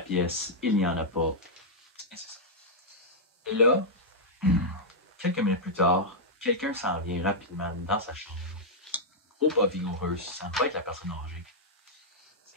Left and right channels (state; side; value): normal; both; correlation -0.07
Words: pièce, il n'y en a pas. Et c'est ça. Et là, quelques minutes plus tard, quelqu'un s'en vient rapidement dans sa chambre. Gros pas vigoureux, ça ne va être la personne âgée.